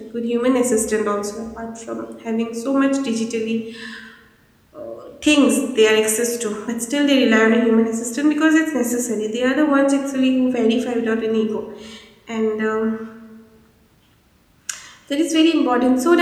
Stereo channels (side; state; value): both; identical; correlation 1.00